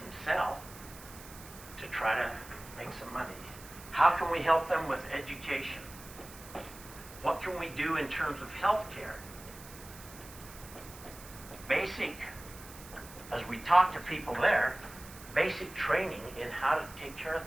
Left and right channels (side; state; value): right; noise; hiss, 17 dB below the sound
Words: sell to try to make some money. How can we help them with education? What can we do in terms of health care? Basic, as we talk to people there, basic training in how to take care of